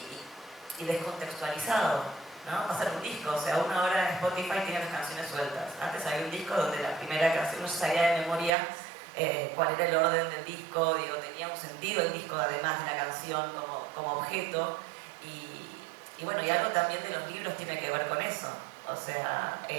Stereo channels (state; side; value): drops out; left; at 8.5 s